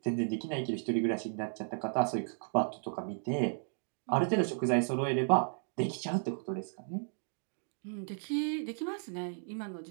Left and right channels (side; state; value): left; silent; digital silence